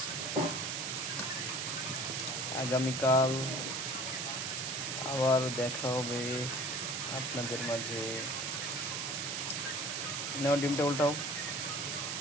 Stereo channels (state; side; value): noise; right; hiss, 2 dB below the sound